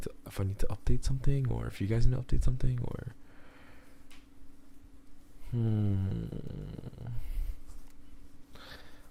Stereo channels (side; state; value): both; identical; correlation 1.00